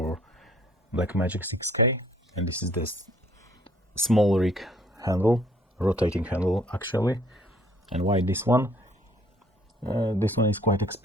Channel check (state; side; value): normal; both; correlation 0.60